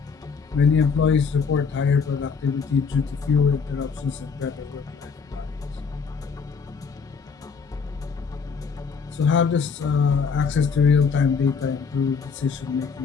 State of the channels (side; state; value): right; quieter; 5.6 dB